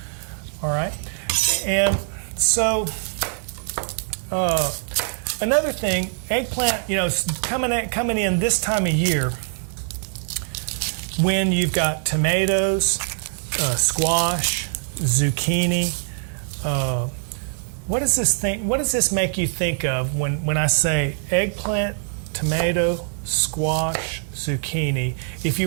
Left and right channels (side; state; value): left; silent; digital silence